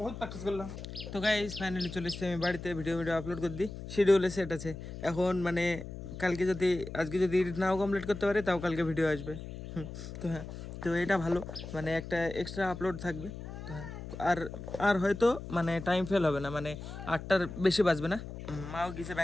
প্র্যাকটিস করলাম। তো গাইস ফাইনালি চলে এসেছি আমি বাড়িতে, ভিডিও আপলোড করে দিই। শিডিউলে সেট আছে এখন, মানে কালকে যদি, আজকে যদি এডিট নাও কমপ্লিট করতে পারি তাও কালকে ভিডিও আসবে। তো হ্যাঁ, তো এটা ভালো, মানে একটা এক্সট্রা আপলোড থাকবে। তো হ্যাঁ, আর আর হয়তো মানে টাইম ফেল হবে না, মানে 8টার বেশি বাজবে না। মাও গেছে,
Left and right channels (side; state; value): left; noise; hum, 10 dB below the sound